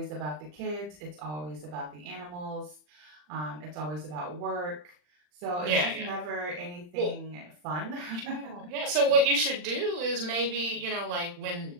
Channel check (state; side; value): late; left; 40 ms